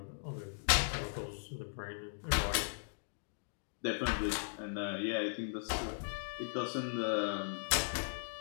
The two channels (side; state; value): right; silent; digital silence